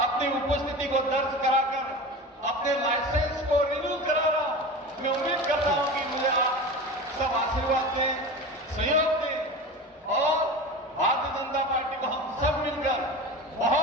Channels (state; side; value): normal; both; correlation 0.30